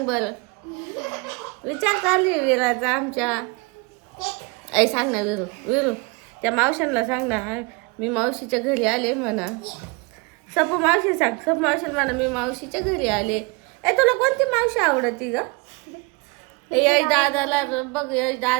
विचार चालू आहे विराचा आमच्या. ऐ सांग ना विरू त्या मावशांना सांग ना, मी मावशीच्या घरी आले म्हणा. सपू मावशी सांग. सपू मावशी म्हणा मी मावशीच्या घरी आले. तुला कोणती मावशी आवडती ग? यश दादाला बघ, यश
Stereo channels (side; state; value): left; quieter; 28.3 dB